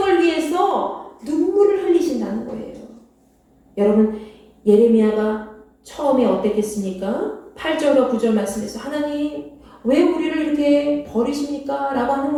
위해서 눈물을 흘리신다는 거예요. 여러분, 예레미야가 처음에 어땠겠습니까? 8절과 9절 말씀에서 하나님 왜 우리를 이렇게 버리십니까? 라고 하는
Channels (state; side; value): identical; both; correlation 1.00